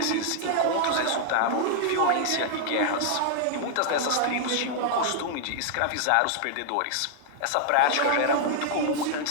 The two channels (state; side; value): different; both; correlation -0.01